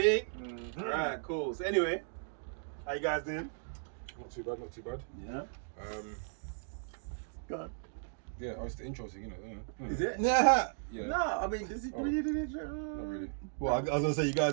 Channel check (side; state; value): left; silent; digital silence